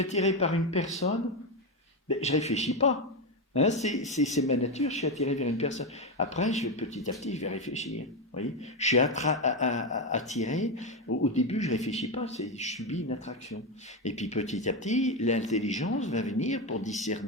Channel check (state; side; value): normal; both; correlation 0.10